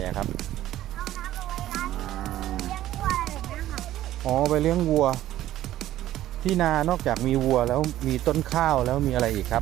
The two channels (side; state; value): left; quieter; 13.7 dB